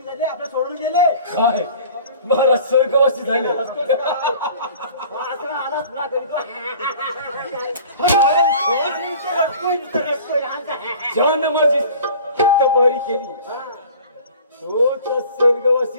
झाले, आपल्या सोडून गेले. काय महाराज स्वर्गवासी झाले? असं आला तुला तरी तो. ज्यानं माझी चित्त बरी केली तोच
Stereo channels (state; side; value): inverted; both; correlation -0.46